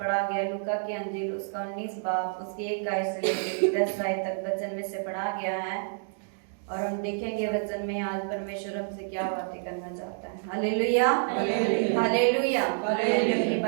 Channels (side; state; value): left; silent; digital silence